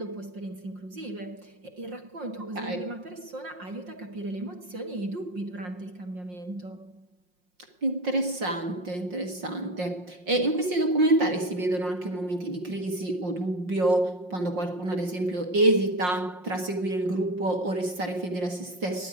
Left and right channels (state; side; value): late; left; 5.6 ms